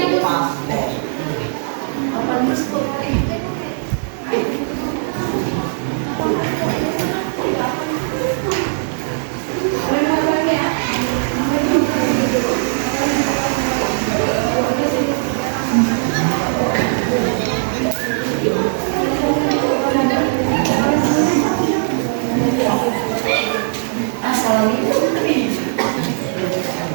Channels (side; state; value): left; silent; digital silence